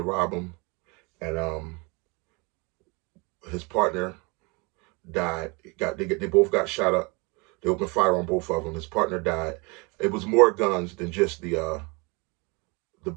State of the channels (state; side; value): quieter; left; 28.8 dB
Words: rob him, and his partner died. They both got shot up. They opened fire on both of them. His partner died. It was more guns than just the